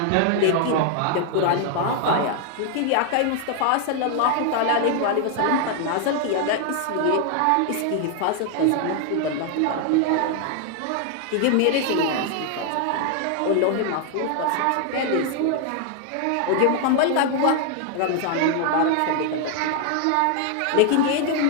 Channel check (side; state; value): both; different; correlation 0.00